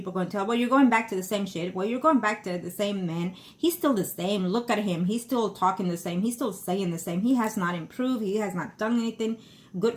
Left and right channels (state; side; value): identical; both; correlation 1.00